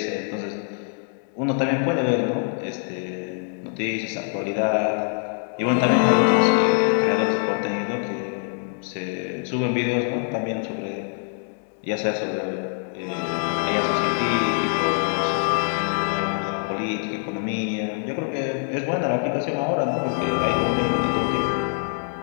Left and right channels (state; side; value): silent; right; 58 dB below the other